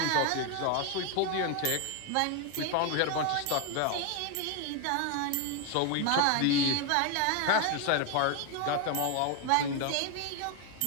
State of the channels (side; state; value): both; different; correlation 0.01